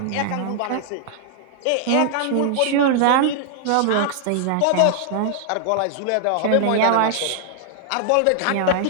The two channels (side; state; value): both; different; correlation -0.01